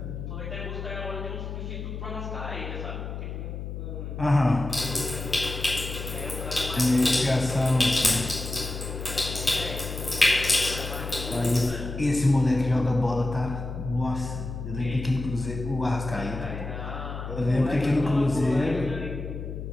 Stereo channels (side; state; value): left; noise; hum, 7 dB below the sound